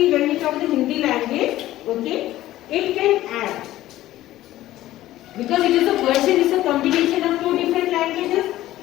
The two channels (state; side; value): quieter; right; 15.0 dB